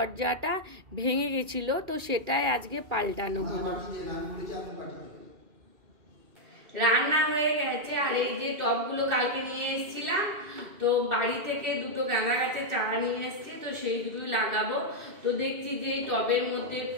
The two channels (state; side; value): late; left; 2.4 ms